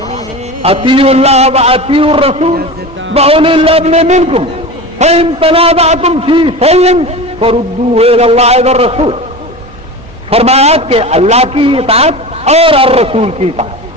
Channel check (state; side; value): normal; both; correlation 0.30